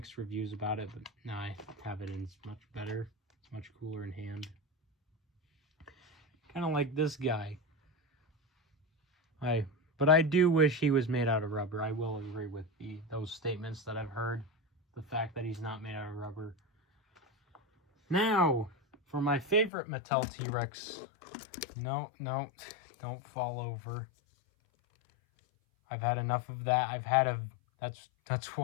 reviews about it, but now I have it and it's much better. It's much cooler in hand. Kind of like this guy. But I do wish he was made out of rubber. I will agree with those statements that I've heard. The fact that he's not made out of rubber. Now, for my favorite Mattel T-Rex. No, don't fall over. I've had enough of that. That's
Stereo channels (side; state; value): right; drops out; at 19.7 s